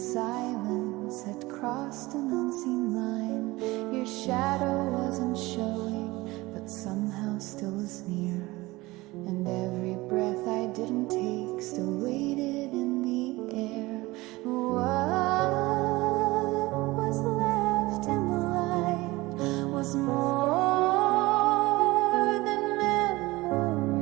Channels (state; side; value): quieter; left; 20.6 dB